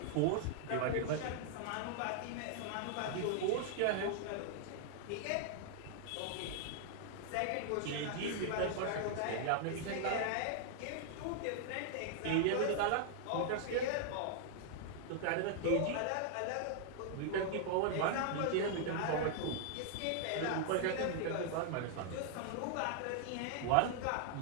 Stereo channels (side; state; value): both; different; correlation -0.01